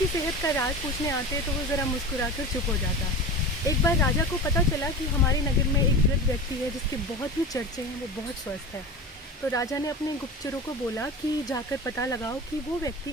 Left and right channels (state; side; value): normal; both; correlation 0.30